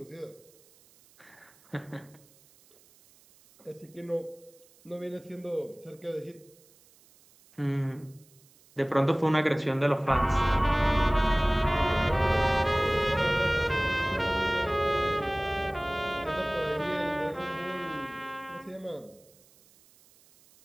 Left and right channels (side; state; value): right; noise; hiss, 29 dB below the sound